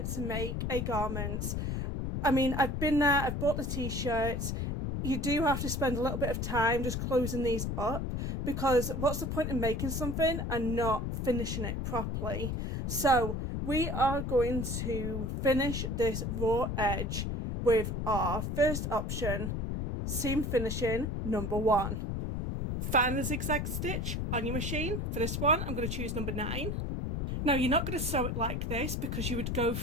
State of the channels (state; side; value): noise; left; rumble, 2 dB below the sound